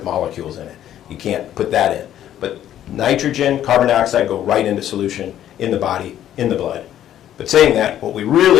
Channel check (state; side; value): quieter; right; 11.4 dB